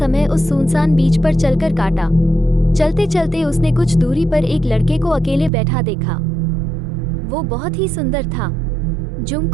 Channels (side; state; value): left; drops out; at 5.5 s